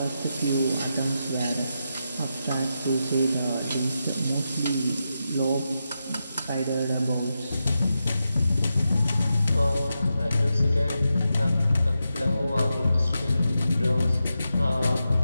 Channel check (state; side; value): inverted; both; correlation -0.88